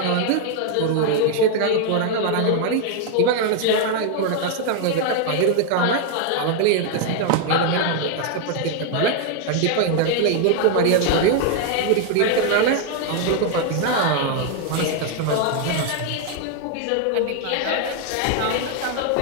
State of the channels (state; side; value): different; both; correlation 0.00